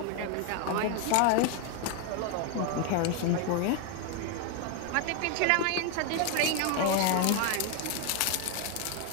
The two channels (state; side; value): different; both; correlation 0.01